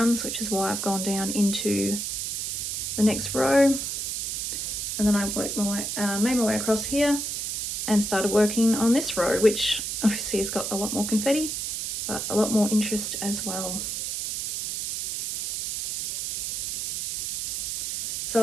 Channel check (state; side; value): noise; right; hiss, 2 dB below the sound